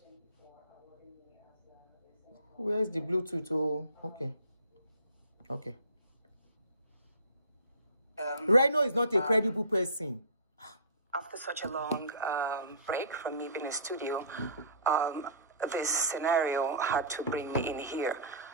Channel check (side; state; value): both; inverted; correlation -0.40